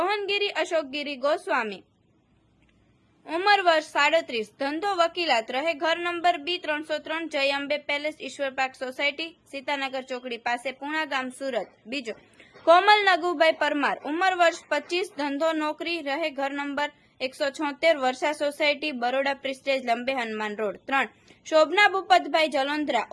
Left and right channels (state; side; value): identical; both; correlation 1.00